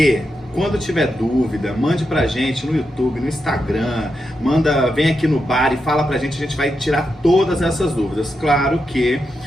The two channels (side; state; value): both; normal; correlation 0.86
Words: quando tiver dúvida, mande pra gente no YouTube, no Instagram, vem aqui no bar e fala pra gente, a gente vai tirar todas essas dúvidas. Claro que